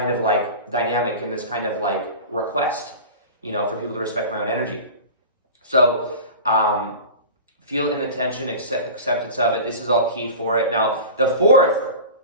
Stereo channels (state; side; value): inverted; both; correlation -0.34